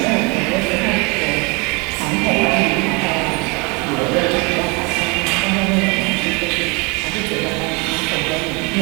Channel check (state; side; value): quieter; left; 29.2 dB